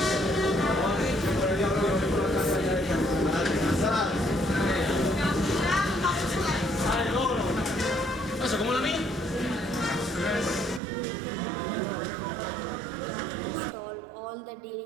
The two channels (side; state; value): left; drops out; at 10.8 s